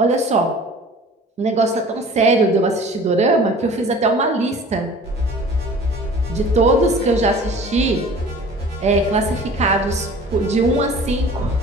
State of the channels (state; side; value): normal; both; correlation 0.45